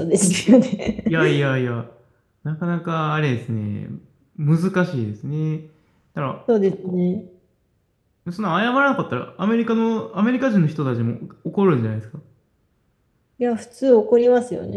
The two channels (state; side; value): identical; both; correlation 1.00